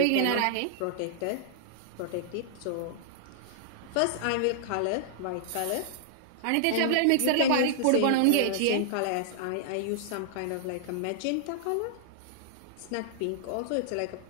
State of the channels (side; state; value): both; different; correlation -0.01